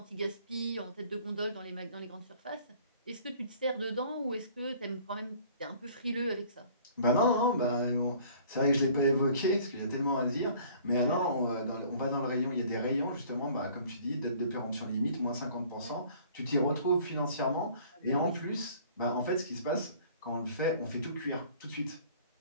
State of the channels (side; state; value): both; inverted; correlation -0.52